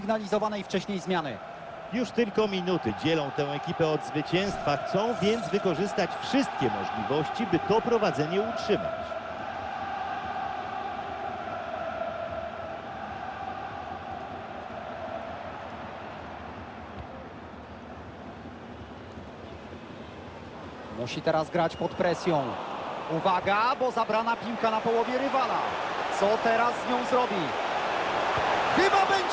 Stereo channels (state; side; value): identical; both; correlation 1.00